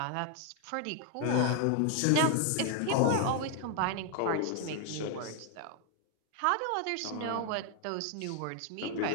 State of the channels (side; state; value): both; different; correlation 0.01